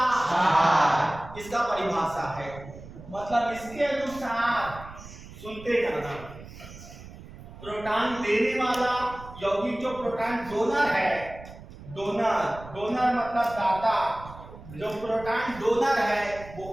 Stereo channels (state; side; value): noise; right; rumble, 16 dB below the sound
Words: इसका परिभाषा है। मतलब इसके अनुसार सुनते जाना, प्रोटॉन देने वाला यौगिक जो प्रोटॉन डोनर है, डोनर मतलब दाता, जो प्रोटॉन डोनर है